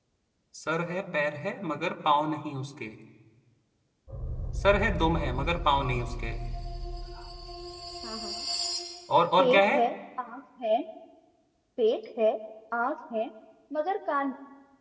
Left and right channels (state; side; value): identical; both; correlation 1.00